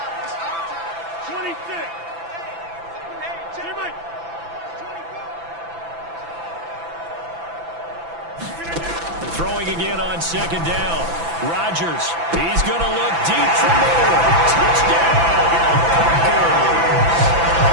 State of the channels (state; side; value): late; left; 6.0 ms